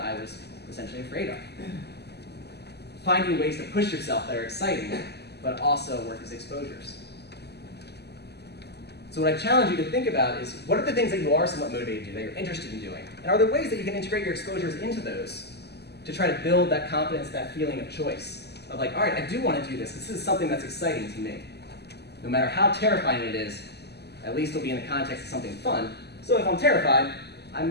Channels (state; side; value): late; right; 0.48 ms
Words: was essentially afraid of. Finding ways to push yourself that are exciting, but also work as exposures. So what I challenge you to think about is, what are the things that you are somewhat motivated to do, that you're interested in doing? And are there ways that you can integrate your exposures into those to try to build that confidence, that feeling of choice? Of like, all right, I do want to do this. This is something that's exciting to me. No matter how terrifying it is, at least it'll be in the context of something fun. So if I'm terrified, I